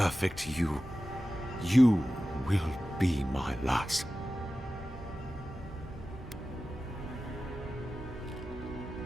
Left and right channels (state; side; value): normal; both; correlation 0.94